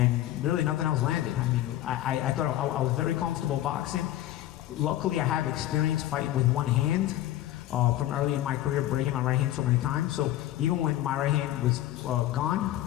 really nothing else landed. I mean, I thought I was very comfortable boxing. Luckily I have experience fighting with one hand from early in my career, breaking my right hand so many times. So even when my right hand was gone,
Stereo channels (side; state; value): right; quieter; 13.9 dB